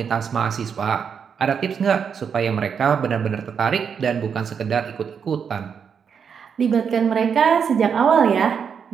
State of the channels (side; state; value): left; quieter; 6.9 dB